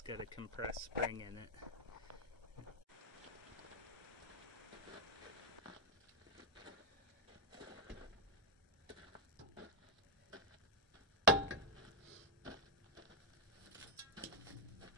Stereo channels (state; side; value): normal; both; correlation 0.00